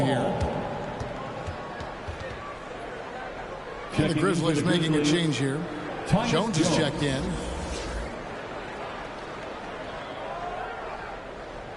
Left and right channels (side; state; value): both; identical; correlation 1.00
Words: here. And the Grizzlies making a change here. Jones is checked in.